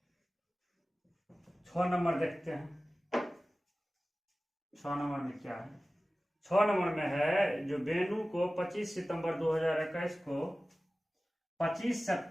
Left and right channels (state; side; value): normal; both; correlation 0.97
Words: छह नंबर देखते हैं, 6 नंबर में क्या है? 6 नंबर में है जो बेनू को 25 सितंबर 2021 को 25